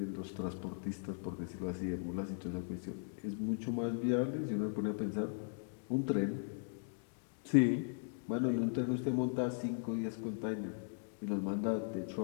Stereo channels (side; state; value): right; silent; digital silence